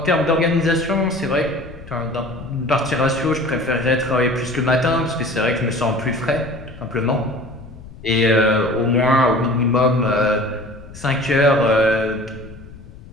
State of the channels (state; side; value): noise; left; rumble, 17 dB below the sound